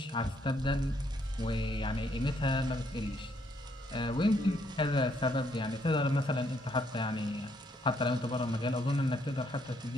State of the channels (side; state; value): both; normal; correlation 0.72